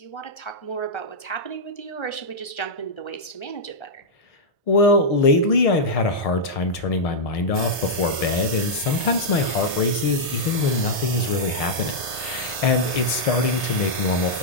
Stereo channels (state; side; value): late; right; 1.7 ms